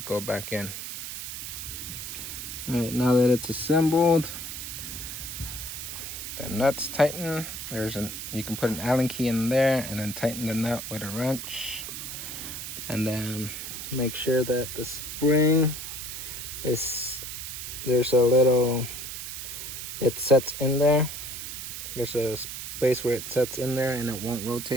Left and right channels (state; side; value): noise; right; hiss, 7 dB below the sound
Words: go back in. All right, now that it's assembled, the nuts tighten. You can put an Allen key in there and then tighten the nut with a wrench, and then make sure that the spring there's a little, it sets in there. There's a space where it sets in there and it won't